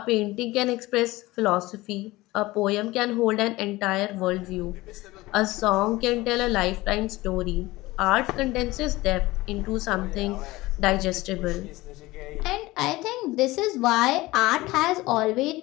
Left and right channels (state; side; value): quieter; right; 19.5 dB